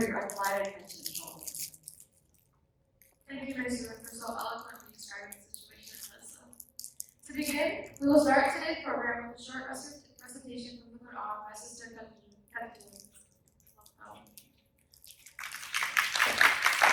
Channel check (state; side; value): identical; both; correlation 1.00